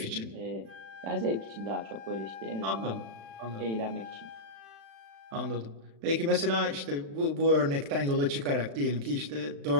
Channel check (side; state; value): left; late; 36 ms